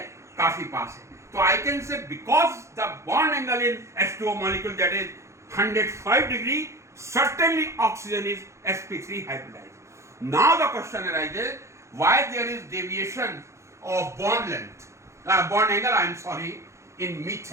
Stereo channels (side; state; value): left; late; 0.14 ms